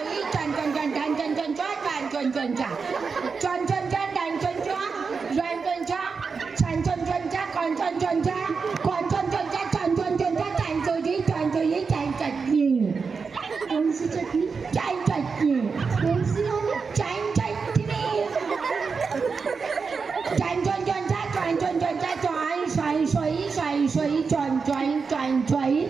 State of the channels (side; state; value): left; quieter; 5.1 dB